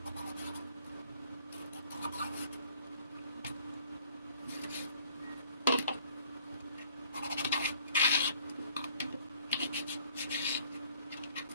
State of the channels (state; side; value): inverted; both; correlation -0.59